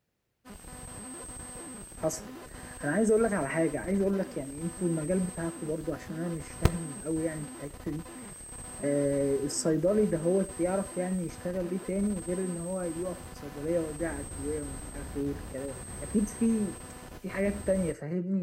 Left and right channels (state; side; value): identical; both; correlation 1.00